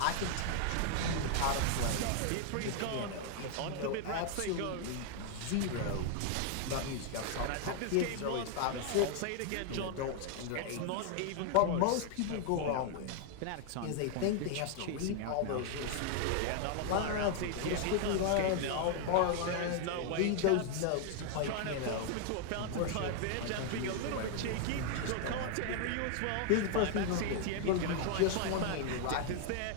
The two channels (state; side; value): different; both; correlation 0.00